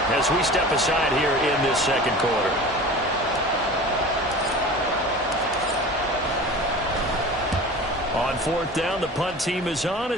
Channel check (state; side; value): normal; both; correlation 0.37